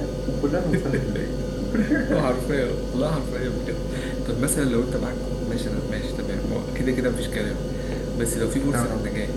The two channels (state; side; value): identical; both; correlation 1.00